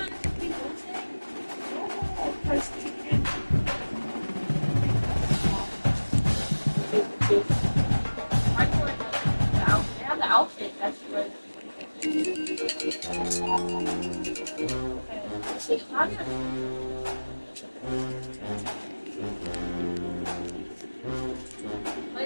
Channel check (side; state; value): both; inverted; correlation -1.00